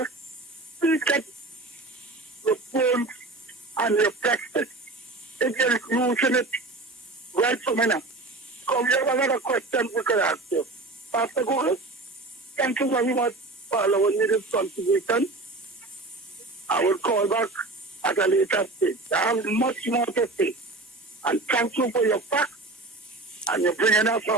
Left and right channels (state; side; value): quieter; left; 3.1 dB